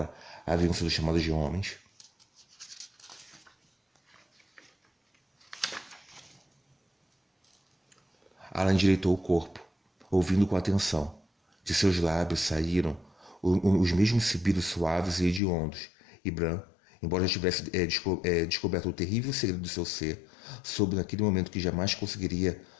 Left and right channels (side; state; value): right; drops out; at 15.4 s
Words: haviam sido chamadas de homens. Alan endireitou o corpo, ouvindo com atenção. De seus lábios saíram os mesmos sibilos suaves e hediondos, e Bran, embora já tivesse descoberto o terrível segredo do seu ser, soube naquele momento que jamais conseguiria